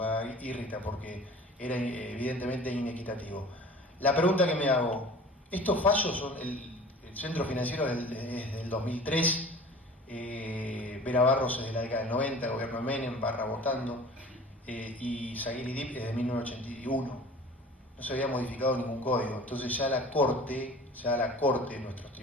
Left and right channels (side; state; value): both; normal; correlation 0.43